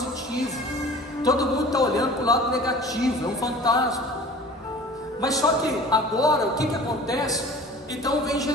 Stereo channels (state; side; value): normal; both; correlation 0.44